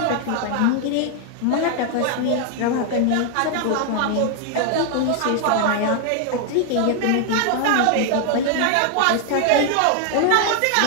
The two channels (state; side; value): different; both; correlation 0.00